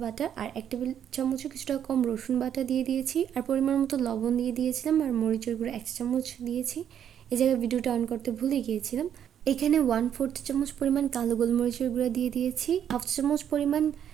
বাটা আর 1 টেবিল চামচও কিছুটা কম রসুন বাটা দিয়ে দিয়েছি, আর পরিমাণ মতো লবণ দিয়ে দিয়েছিলাম, আর মরিচের গুঁড়ো 1 চামচ দিয়েছি। এই জায়গায় ভিডিওটা অন করতে ভুলে গিয়েছিলাম। এখানে 1/4 চামচ পরিমাণ কালো গোলমরিচের গুঁড়া দিয়ে দিয়েছি, 1/2 চামচ পরিমাণ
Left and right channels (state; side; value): quieter; left; 9.3 dB